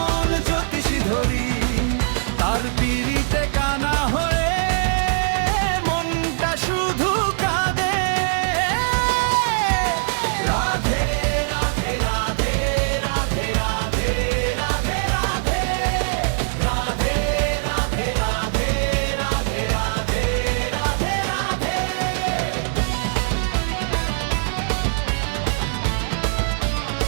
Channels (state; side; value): silent; left; 64 dB below the other